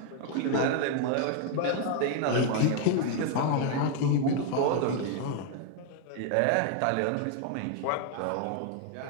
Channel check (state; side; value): different; both; correlation 0.00